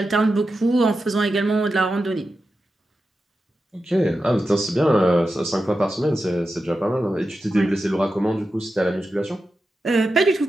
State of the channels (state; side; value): normal; both; correlation 0.90